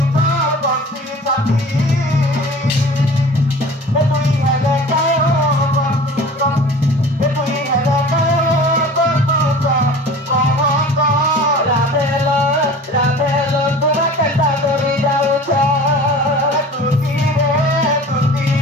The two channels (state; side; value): normal; both; correlation 0.42